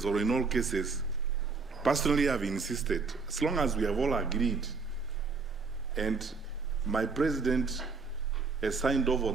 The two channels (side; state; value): left; quieter; 4.6 dB